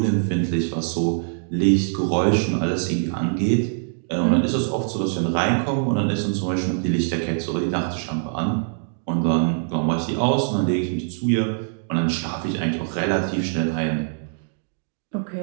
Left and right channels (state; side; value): silent; left; digital silence